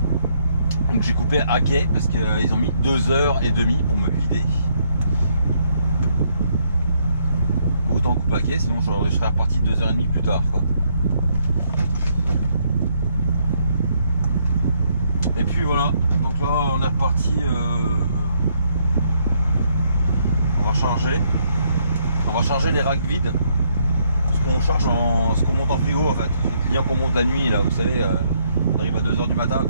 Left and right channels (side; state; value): both; inverted; correlation -0.72